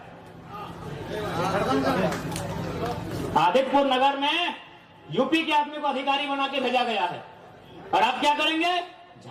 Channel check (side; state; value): both; identical; correlation 1.00